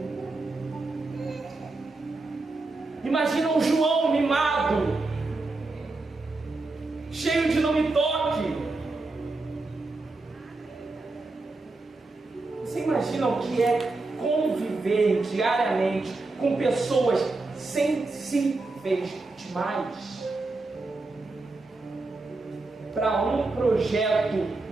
Imagina o João mimado, cheio de não me toque. Você imagina o que é conviver diariamente com pessoas sensíveis demais para um projeto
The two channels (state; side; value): quieter; left; 3.3 dB